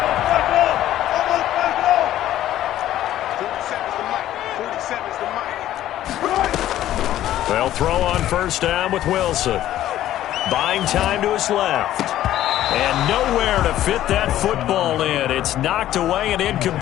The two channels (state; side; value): quieter; right; 13.0 dB